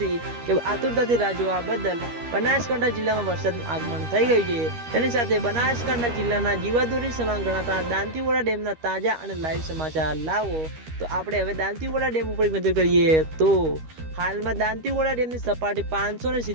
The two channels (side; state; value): left; late; 13 ms